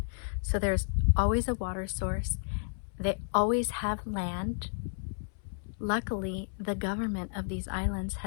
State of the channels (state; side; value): silent; right; 57 dB below the other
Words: so there's always a water source. They always have land. Luckily, the government of these islands